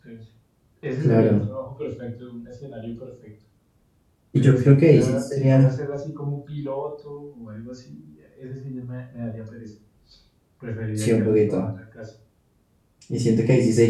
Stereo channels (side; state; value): both; identical; correlation 1.00